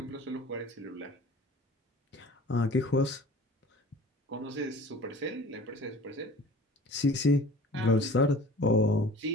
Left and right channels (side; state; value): both; normal; correlation 0.43